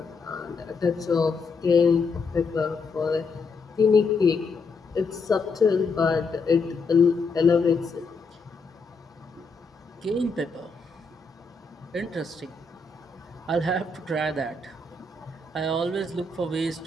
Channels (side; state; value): right; quieter; 4.0 dB